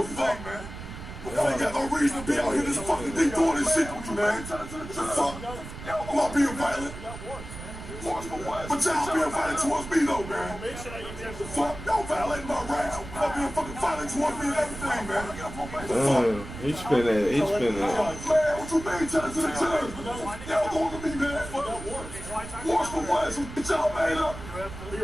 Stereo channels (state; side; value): noise; right; rumble, 11 dB below the sound